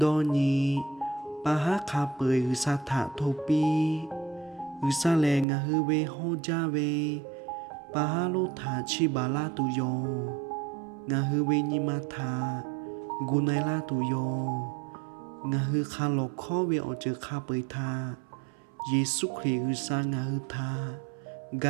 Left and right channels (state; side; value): drops out; left; at 5.5 s